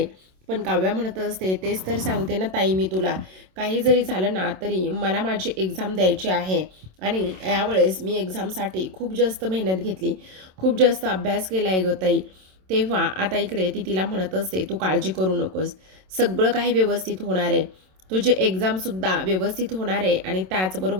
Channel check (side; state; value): left; late; 27 ms